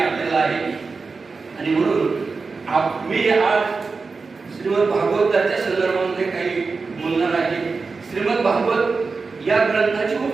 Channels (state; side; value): quieter; left; 4.4 dB